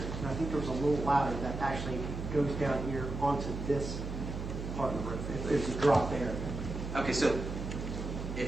I think there was a little ladder that actually goes down here onto this part of the roof. There's a drop there. Okay, so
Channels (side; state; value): right; noise; hum, 6 dB below the sound